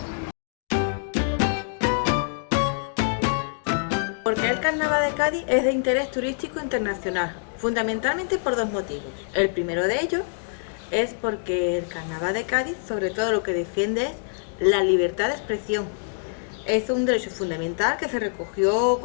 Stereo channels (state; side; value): silent; right; digital silence